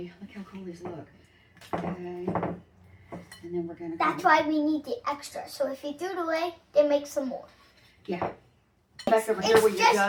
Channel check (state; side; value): identical; both; correlation 1.00